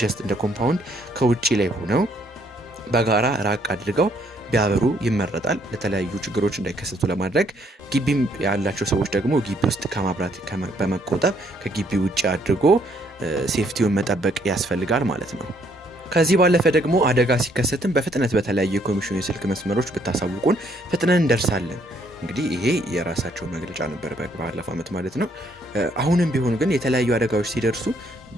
ጀስት እንደ ኮምፓውንድ ከውጪ ላይ ሆነው በጋራ ራቅ አድርገው ቢያበሩ ይመረጣል። ለተለያዩ ችግሮች እንዳይከሰቱ ለማድረግ ግቢም ያላቸው ሰዎች ደግሞ ግቢ ውስጥ ከማብራት በመቆጠብ ከግቢ ውጪ አድርጎ ሴፍቲውን መጠበቅ ያስፈልጋል ማለት ነው። ከዚህ ባለፈ ደግሞ አደጋ ሲከሰትም በፍጥነት በተለያዩ የኮሚሽኑ የስልክ መስመሮች ብታሳውቁን ፍጥነን እንደርሳለን። እንግዲህ ይሄ የራሳቸው መግለጫ ነበር ባለፈው ዓመት ማለት ነው። አሁንም ቢሆን ግን የተለያዩ አደጋዎች ሲደርሱ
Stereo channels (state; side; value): normal; both; correlation 0.68